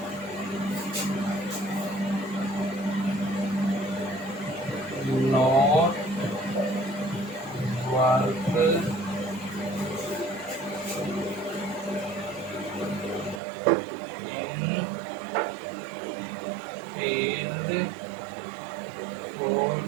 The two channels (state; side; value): drops out; left; at 13.4 s